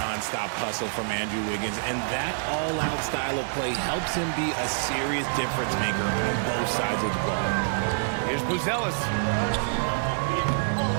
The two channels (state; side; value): silent; left; digital silence